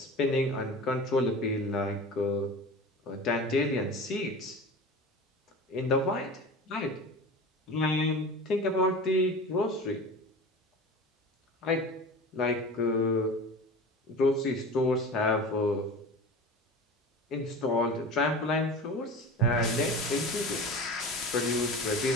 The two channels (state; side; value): normal; both; correlation 0.34